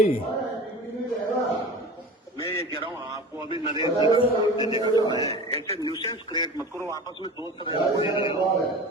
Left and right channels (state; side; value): normal; both; correlation 0.35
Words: मैं ये कह रहा हूँ आपको अभी नरेंद्र देखा है, ऐसे न्यूसेंस क्रिएट मत करो, आपस में दोस्त रहो